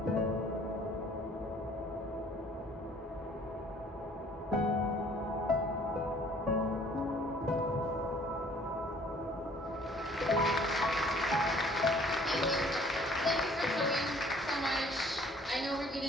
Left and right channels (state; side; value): normal; both; correlation 0.56